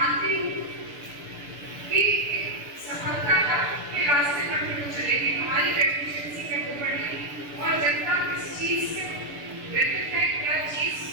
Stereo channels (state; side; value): late; left; 6.9 ms